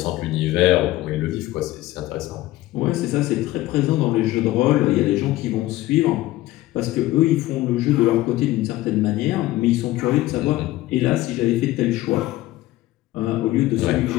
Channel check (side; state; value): right; quieter; 16.6 dB